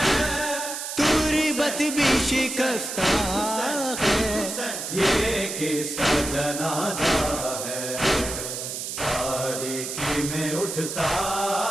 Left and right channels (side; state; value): right; noise; hiss, 5 dB below the sound